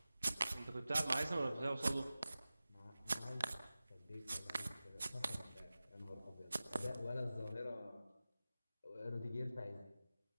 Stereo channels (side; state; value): both; inverted; correlation -0.96